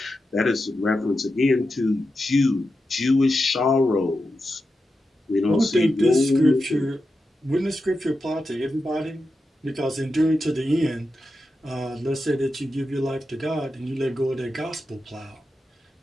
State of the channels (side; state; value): both; normal; correlation 0.89